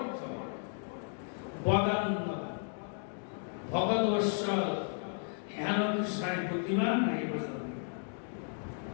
বদান্ন, ভগদশ্বর, হেন কৃষ্ণায় বুদ্ধিমান নাই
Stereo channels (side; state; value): right; silent; 55 dB below the other